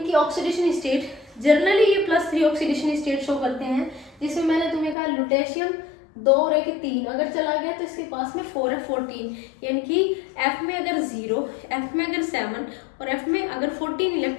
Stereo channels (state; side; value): drops out; right; at 5.0 s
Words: ऑक्सीडेशन स्टेट, जनरली ये +3 ऑक्सीडेशन स्टेट शो करते हैं, जिसमें मैंने तुम्हें कहा लुटेशियम 2 और 1 3 अगर चला गया तो इसके पास में 4F14, यानी कि F में अगर 0, F में अगर 7 और F में अगर 14